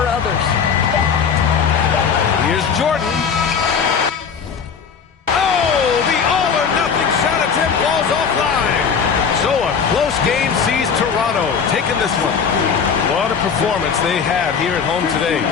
others. Here's Jordan. Oh, the all or win this one. What a performance they had here at home today.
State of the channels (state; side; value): quieter; right; 6.4 dB